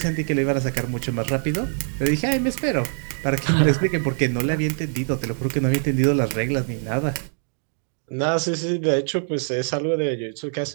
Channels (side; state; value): left; silent; 63 dB below the other